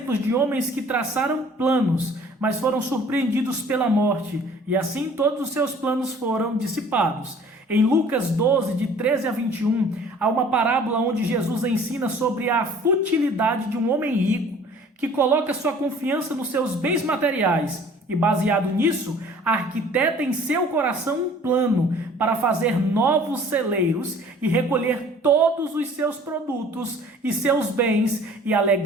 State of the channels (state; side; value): normal; both; correlation 0.51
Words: de homens que traçaram planos, mas foram surpreendidos pela morte, e assim todos os seus planos foram dissipados. Em Lucas 12, de 13 a 21, há uma parábola onde Jesus ensina sobre a futilidade de um homem rico que coloca sua confiança nos seus bens materiais e, baseado nisso, arquiteta em seu coração um plano para fazer novos celeiros e recolher todos os seus produtos e seus bens e